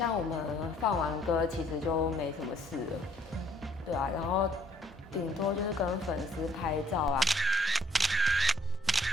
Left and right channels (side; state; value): both; normal; correlation 0.63